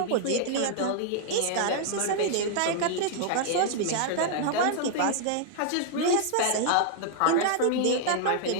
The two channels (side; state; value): both; different; correlation -0.01